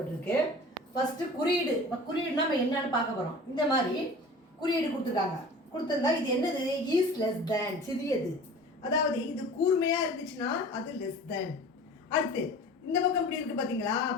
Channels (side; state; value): both; normal; correlation 0.41